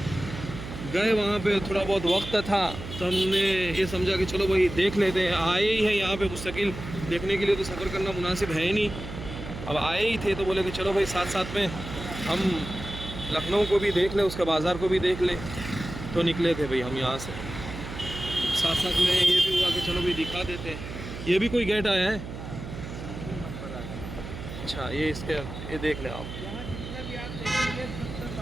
गए वहाँ पे थोड़ा बहुत वक्त था तो हमने ये समझा कि चलो भाई देख लेते हैं, आए ही हैं यहाँ पे मुस्तकिल देखने के लिए, तो सफ़र करना मुनासिब है ही नहीं। अब आए ही थे तो बोले कि चलो भाई साथ साथ में हम लखनऊ को भी देख ले, उसके बाज़ार को भी देख ले, तो निकले थे भाई हम यहाँ से। साथ साथ में ये भी हुआ कि चलो भाई दिखा देते हैं। ये भी कोई गेट आया है? अच्छा, ये इसके ये देख ले आप। यहाँ जितना भी आप देखेंगे सबसे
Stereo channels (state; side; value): noise; right; hum, 10 dB below the sound